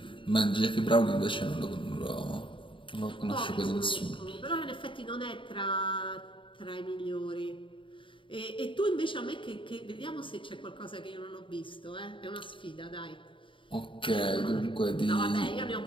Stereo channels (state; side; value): late; right; 0.25 ms